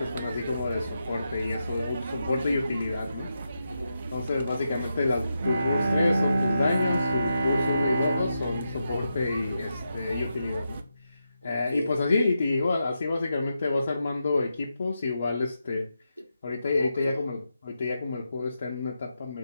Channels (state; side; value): inverted; both; correlation -0.87